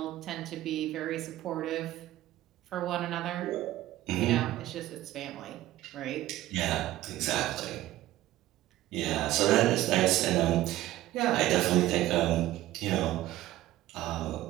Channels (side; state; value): left; quieter; 15.3 dB